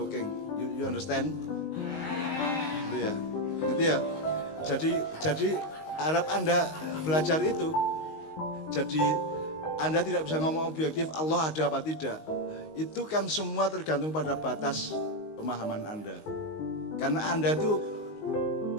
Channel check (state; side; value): late; right; 19 ms